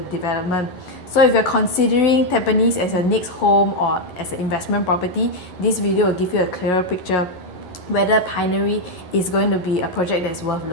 development. So if you're considering Tampines as your next home or as an investment property, this video will give you a clearer picture whether Pinery is going to be a project that's worth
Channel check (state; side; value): late; right; 11 ms